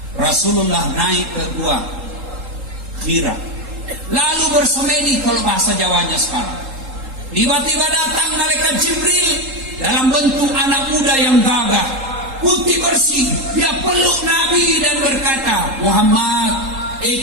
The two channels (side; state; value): left; late; 3.8 ms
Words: Rasulullah naik ke Gua Hira, lalu bersemedi kalau bahasa Jawanya sekarang. Tiba-tiba datang malaikat Jibril dalam bentuk anak muda yang gagah, putih bersih. Dia peluk Nabi dan berkata, Muhammad,